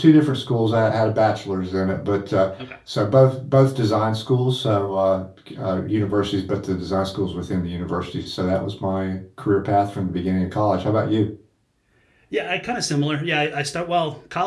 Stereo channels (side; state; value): both; identical; correlation 1.00